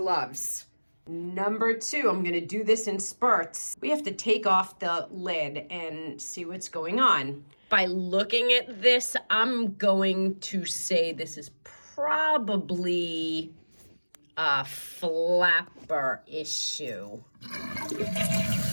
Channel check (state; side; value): inverted; both; correlation -1.00